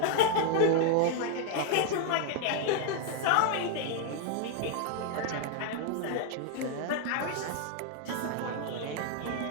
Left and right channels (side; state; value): both; different; correlation 0.00